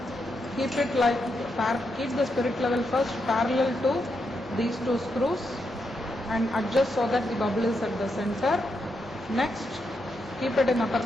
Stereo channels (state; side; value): normal; both; correlation 0.82